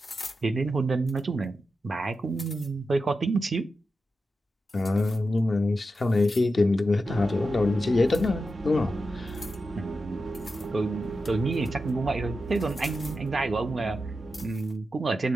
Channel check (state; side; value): normal; both; correlation 0.90